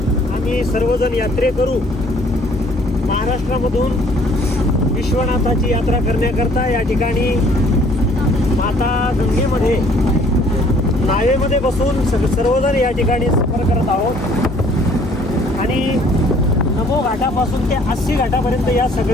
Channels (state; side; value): normal; both; correlation 0.59